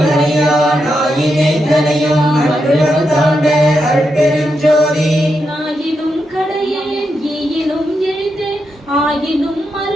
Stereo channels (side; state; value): both; normal; correlation 0.84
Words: மறியான் ஆயினை தனையும் அற்புதம் தாண்ட அருட்பெருஞ்சோதி ஆயினும் கடையேன் ஈயினும் எளிதேன் ஆயினும்